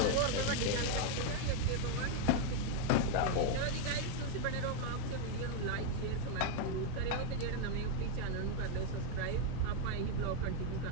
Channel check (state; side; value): different; both; correlation 0.01